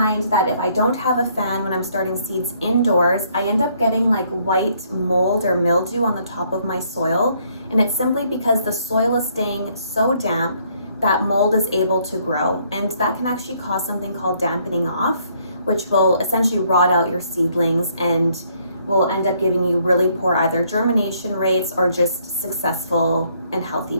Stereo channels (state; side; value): inverted; both; correlation -0.68